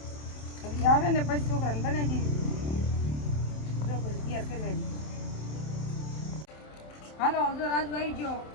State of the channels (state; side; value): late; right; 27 ms